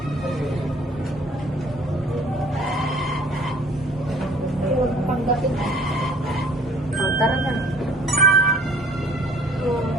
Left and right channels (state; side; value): normal; both; correlation 0.53